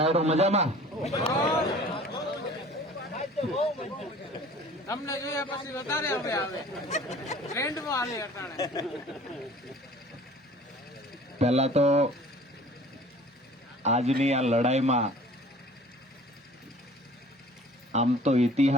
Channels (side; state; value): both; normal; correlation 0.48